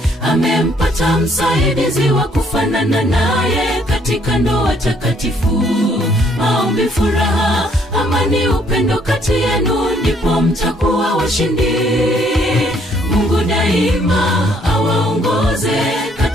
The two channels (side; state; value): both; normal; correlation 0.66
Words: Amempata msaidizi wa kufanana naye katika ndoa takatifu. Maombi, furaha, amani, upendo kati yenu, ndipo mtakuwa washindi. Mungu daima awaongoze